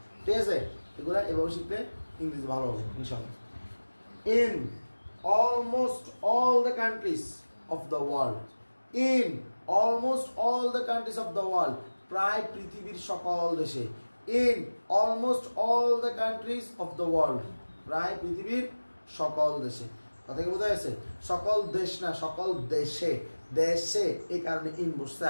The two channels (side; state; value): both; inverted; correlation -1.00